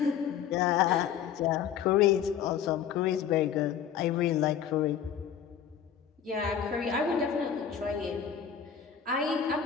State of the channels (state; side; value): quieter; right; 8.4 dB